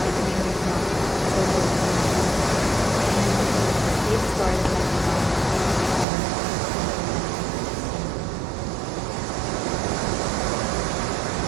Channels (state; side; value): drops out; left; at 6.1 s